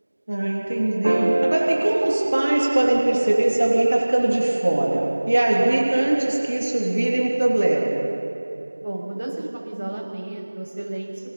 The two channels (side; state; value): both; inverted; correlation -1.00